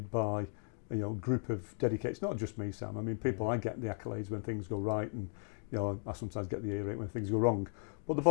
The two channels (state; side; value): silent; right; 54 dB below the other